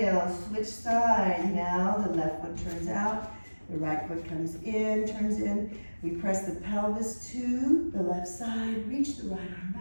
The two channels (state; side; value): inverted; both; correlation -1.00